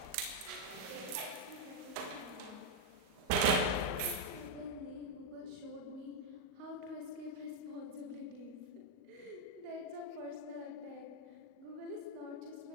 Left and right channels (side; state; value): left; late; 39 ms